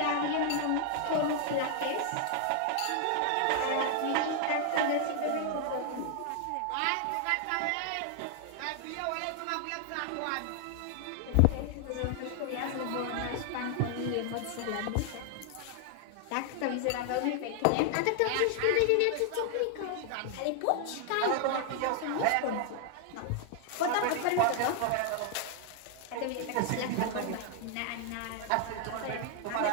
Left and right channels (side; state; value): both; different; correlation 0.00